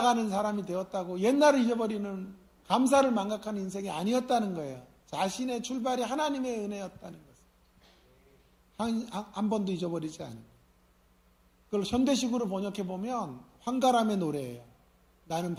사람이 되었다고 옛날을 잊어버리는, 감사를 망각하는 인생이 아니었다는 거예요. 자신의 출발이 하나님의 은혜였다는 것을 한 번도 잊어버리지 않은 거예요. 그걸 현대식으로 번역해 보면 황가람의 노래예요. 나는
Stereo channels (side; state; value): both; identical; correlation 1.00